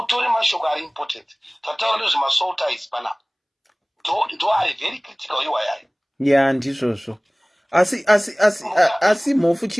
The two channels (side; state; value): both; identical; correlation 1.00